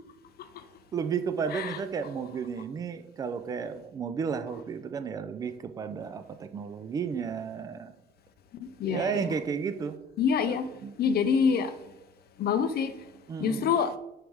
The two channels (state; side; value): normal; both; correlation 0.46